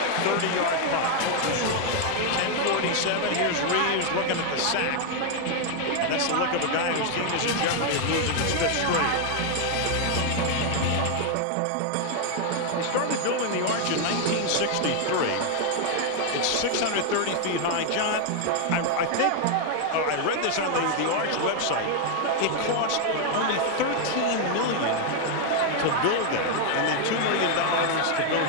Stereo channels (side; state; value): both; different; correlation 0.00